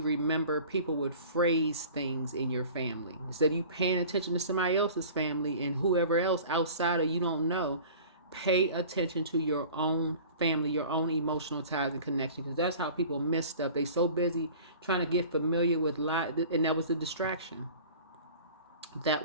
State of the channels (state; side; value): inverted; both; correlation -0.43